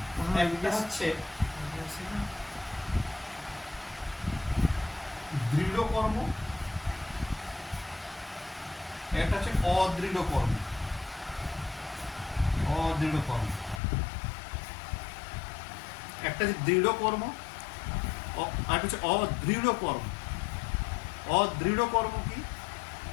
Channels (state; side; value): drops out; right; at 13.8 s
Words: একটা হচ্ছে দৃঢ় কর্ম, একটা হচ্ছে অদৃঢ় কর্ম। অদৃঢ় কর্ম একটা হচ্ছে দৃঢ় কর্ম, আর হচ্ছে অদৃঢ় কর্ম। অদৃঢ় কর্ম কি?